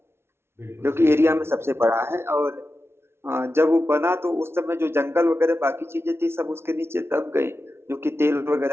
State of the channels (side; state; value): left; late; 0.12 ms